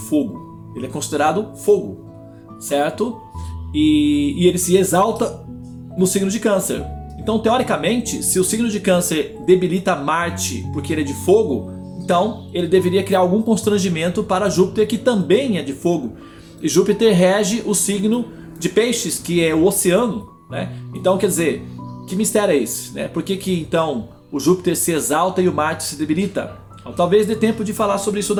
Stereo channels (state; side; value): identical; both; correlation 1.00